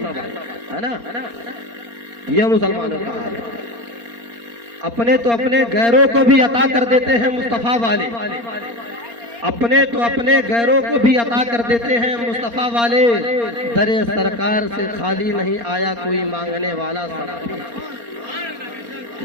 ہے نا, یہ مسلمانوں کا حال ہے. اپنے تو اپنے غیروں کو بھی عطا کر دیتے ہیں مصطفیٰ والے, اپنے تو اپنے غیروں کو بھی عطا کر دیتے ہیں مصطفیٰ والے. در سرکار سے خالی نہیں آیا کوئی مانگنے والا سب,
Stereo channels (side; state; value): left; late; 4.3 ms